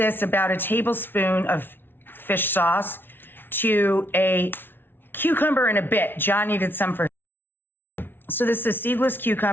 about a tablespoon of fish sauce to a cucumber and a bit. John needed some for. So this is a seedless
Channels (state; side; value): late; right; 0.10 ms